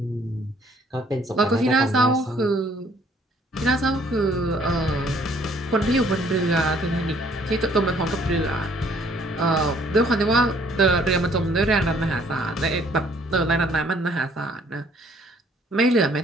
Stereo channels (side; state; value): both; normal; correlation 0.62